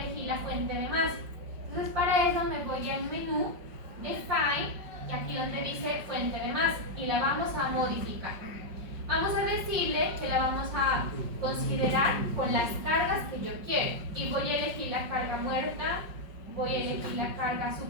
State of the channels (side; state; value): left; late; 5.3 ms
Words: la fuente de masa. Entonces para eso me voy al menú de File y aquí donde dice fuente de masa y la vamos a modificar. Vamos a decirle que la vamos a considerar con las cargas que yo quiero y voy a elegir la carga muerta, voy a elegir la carga